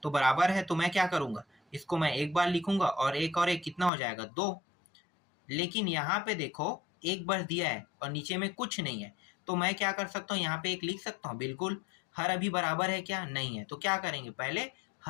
तो बराबर है तो मैं क्या करूंगा, इसको मैं एक बार लिखूंगा और एक कितना हो जाएगा 2। लेकिन यहाँ पे देखो एक बार दिया है और नीचे में कुछ नहीं है, तो मैं क्या कर सकता हूँ, यहाँ पे 1 लिख सकता हूँ। बिल्कुल, हर अभी बराबर है क्या, नहीं है, तो क्या करेंगे, पहले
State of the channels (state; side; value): drops out; right; at 3.9 s